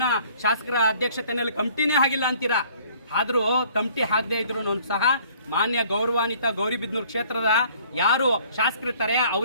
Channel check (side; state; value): both; inverted; correlation -0.57